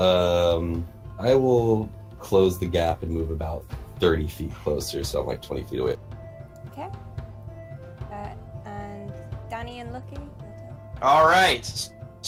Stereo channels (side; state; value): both; identical; correlation 1.00